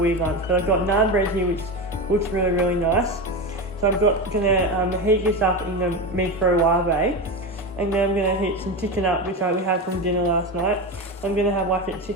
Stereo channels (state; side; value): normal; both; correlation 0.19